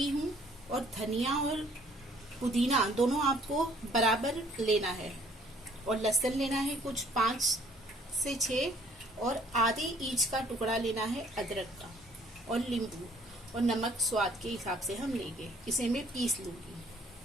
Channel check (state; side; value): normal; both; correlation 0.59